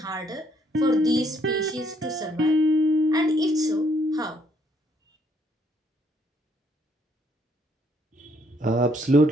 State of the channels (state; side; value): normal; both; correlation 0.68